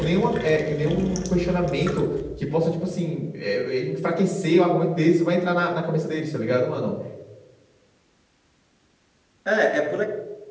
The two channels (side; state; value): both; identical; correlation 1.00